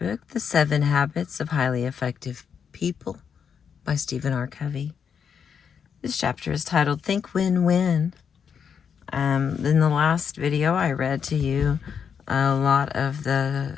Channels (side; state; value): right; quieter; 7.1 dB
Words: The 7 Habits of Highly Effective People by Stephen R. Covey. This chapter is titled Think Win-Win. In the last video, I read to you a lot of the